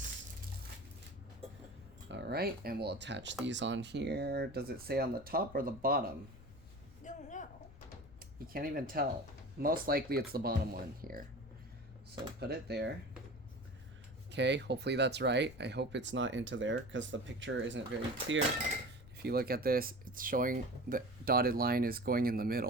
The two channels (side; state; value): left; noise; rumble, 19 dB below the sound